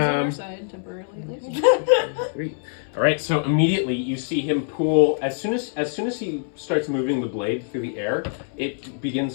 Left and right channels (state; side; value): silent; right; 63 dB below the other